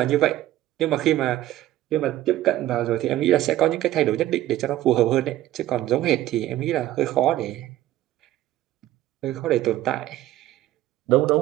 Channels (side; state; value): left; quieter; 14.4 dB